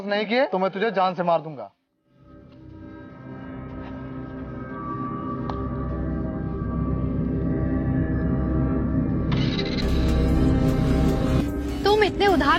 नहीं किए तो मैं तुझे जान से मार दूंगा। तुम इतने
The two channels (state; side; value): identical; both; correlation 1.00